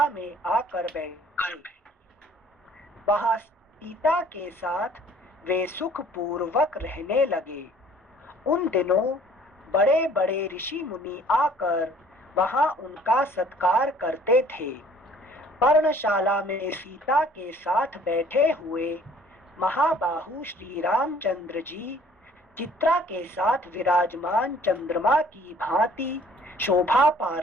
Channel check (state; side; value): normal; both; correlation 0.55